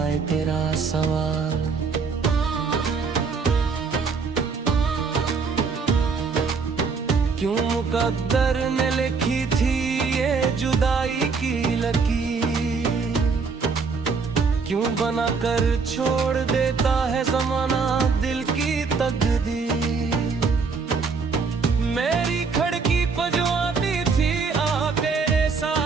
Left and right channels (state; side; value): quieter; left; 5.0 dB